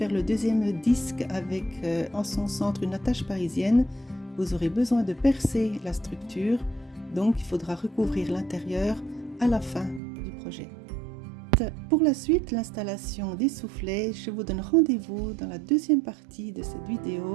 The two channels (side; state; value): left; drops out; at 10.0 s